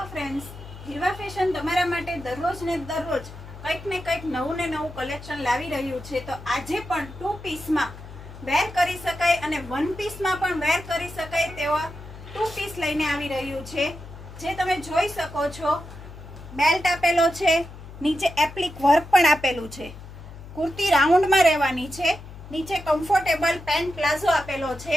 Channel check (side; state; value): left; noise; hum, 15 dB below the sound